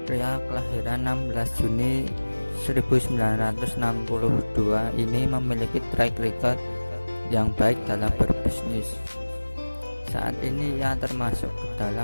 pria kelahiran 16 Juni 1962 ini memiliki track record yang baik dalam berbisnis. Saat ini ia termasuk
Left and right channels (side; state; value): both; inverted; correlation -1.00